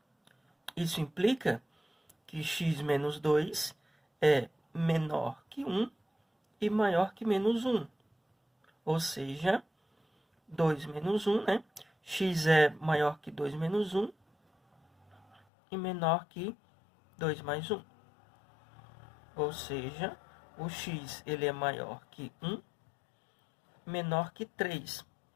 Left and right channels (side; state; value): right; drops out; at 15.4 s